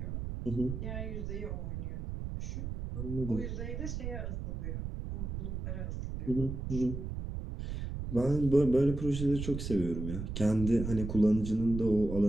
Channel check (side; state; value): right; noise; rumble, 5 dB below the sound